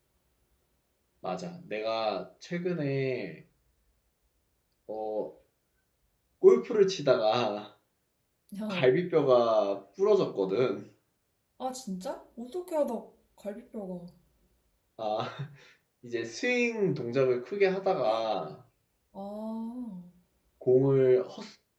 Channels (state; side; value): identical; both; correlation 1.00